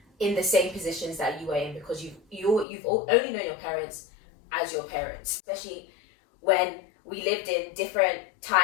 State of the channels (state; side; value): drops out; right; at 2.7 s